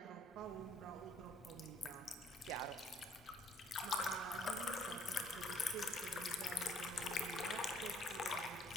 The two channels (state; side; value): normal; both; correlation 0.62